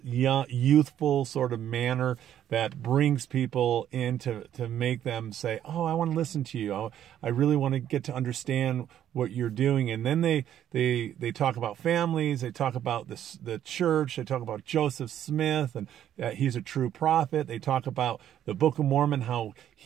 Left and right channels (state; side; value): quieter; left; 10.8 dB